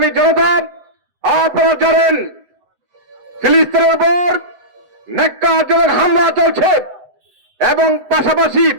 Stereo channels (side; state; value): left; late; 7.7 ms